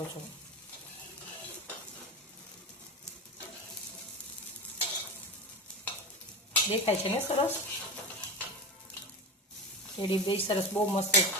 છો. દેખાય છે ને સરસ? ટેડી બેર સરસ બહુ મસ્ત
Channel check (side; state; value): both; normal; correlation 0.23